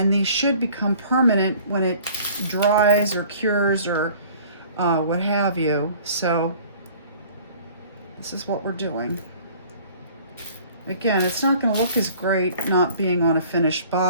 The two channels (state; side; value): inverted; both; correlation -0.50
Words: these should become permanent when it dries or cures or what have you. So this is what we're doing. Again, it's not going to look as great not being on a finished